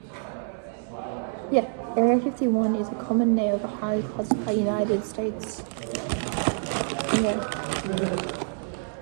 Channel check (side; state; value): left; silent; 60 dB below the other